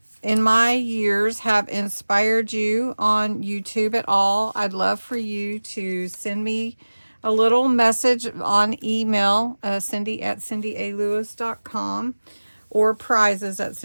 in my years have inspired you on YouTube at all, I'd love for you to send me a little message on email, cindy@cindyalewis.com, or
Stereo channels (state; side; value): inverted; both; correlation -1.00